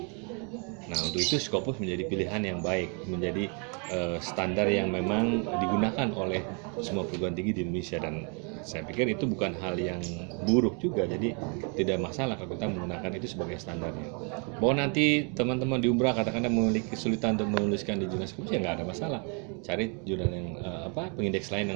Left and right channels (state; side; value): quieter; left; 36.6 dB